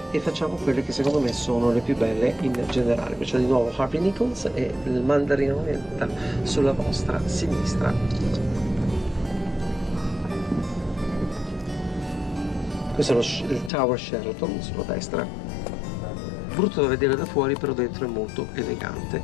e facciamo quelle che secondo me sono le più belle in generale. C'è di nuovo Harvey Nichols e il Mandarino Oriental sulla vostra sinistra. Questo è il Tower Sheraton sulla destra. Brutto da vedere da fuori, però dentro è molto elegante.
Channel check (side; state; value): right; drops out; at 13.7 s